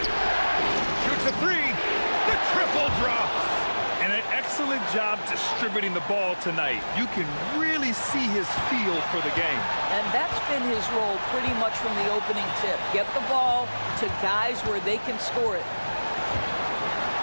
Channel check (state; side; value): inverted; both; correlation -1.00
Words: Shoots a 3. The triple drops. And an excellent job distributing the ball tonight. You can really see his feel for the game. And that's been his role pretty much from the opening tip. Get the ball to guys where they can score it.